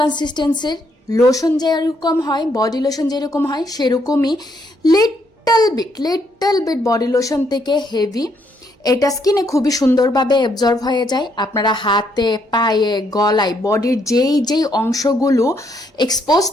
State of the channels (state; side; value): normal; both; correlation 0.73